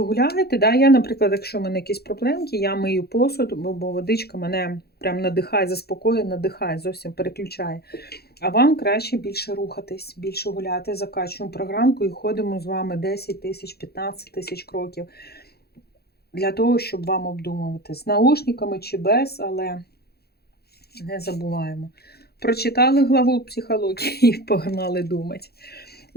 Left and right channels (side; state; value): right; late; 0.46 ms